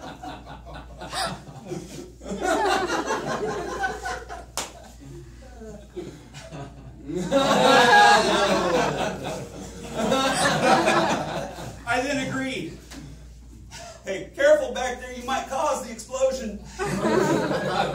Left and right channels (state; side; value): identical; both; correlation 1.00